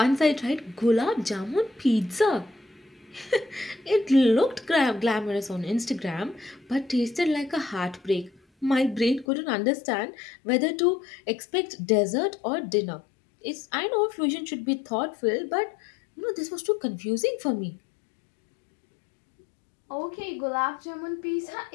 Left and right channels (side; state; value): right; drops out; at 9.2 s